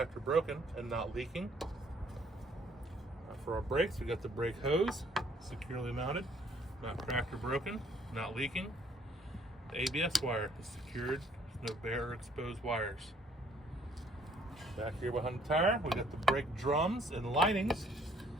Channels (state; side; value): normal; both; correlation 0.62